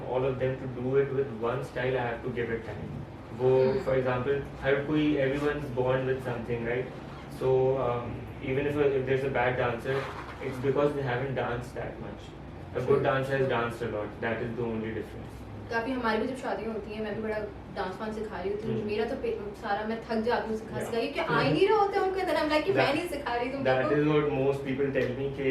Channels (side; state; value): both; identical; correlation 1.00